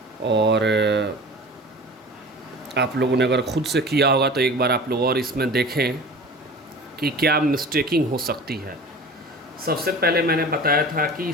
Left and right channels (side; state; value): both; normal; correlation 0.39